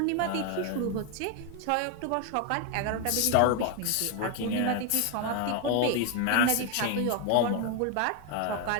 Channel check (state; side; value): different; both; correlation 0.01